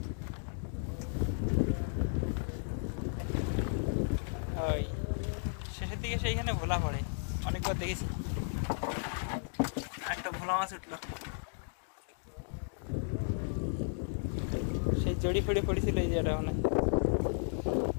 শেষের দিকে সেইখানে ভোলা পড়ে, অনেকবার দেখেছি। একটা ভোলা মাছ উঠলো, সেই চড়ি ফড়ি পড়েছিল এই জায়গাটা। মানে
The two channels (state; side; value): silent; right; digital silence